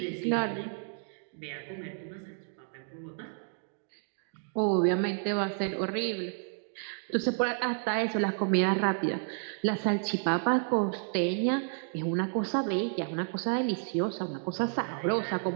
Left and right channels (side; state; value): left; silent; 57 dB below the other